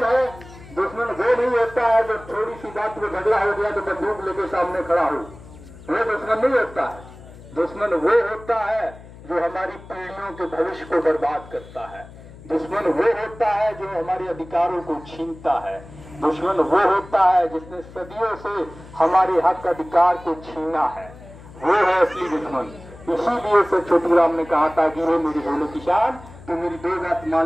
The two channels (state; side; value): noise; left; hum, 18 dB below the sound